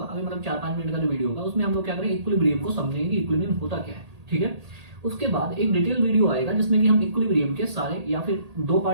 अभी मतलब 4-5 मिनट का जो वीडियो होगा, उसमें हम लोग क्या करें, इक्विलिब्रियम को समझेंगे कि इक्विलिब्रियम होता क्या है, ठीक है। उसके बाद एक डिटेल वीडियो आएगा जिसमें कि हम इक्विलिब्रियम के सारे या फिर 2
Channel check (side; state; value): left; late; 1.8 ms